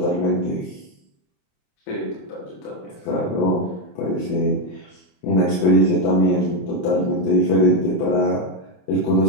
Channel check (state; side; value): late; right; 28 ms